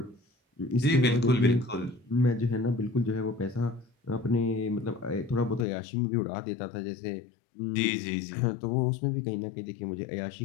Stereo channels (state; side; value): drops out; right; at 5.7 s